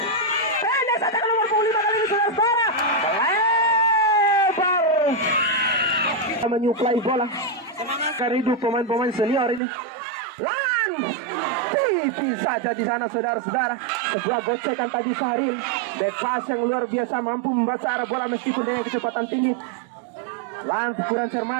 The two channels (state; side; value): drops out; left; at 9.6 s